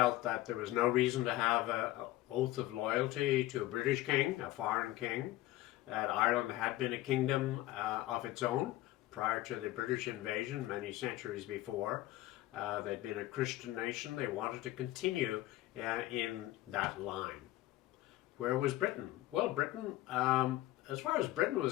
that there was no reason to have an oath of loyalty to a British king, a foreign king, that Ireland had been a kingdom of its own prior to the British invasion many centuries before. They'd been a Christian nation. They wanted to continue in that line. Where was Britain? Well, Britain, as far as Britain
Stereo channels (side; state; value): right; quieter; 16.4 dB